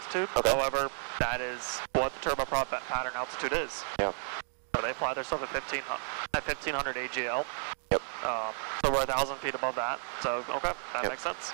Okay. However, that is what the turboprop pattern altitude is. Yeah. So they fly their stuff at 1,500 AGL. Yep. So we're 1,000 feet above that. So, okay, that makes sense.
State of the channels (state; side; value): silent; left; digital silence